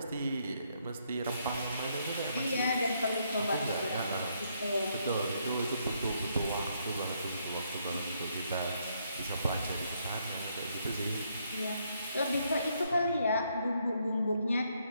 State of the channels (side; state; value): both; inverted; correlation -0.74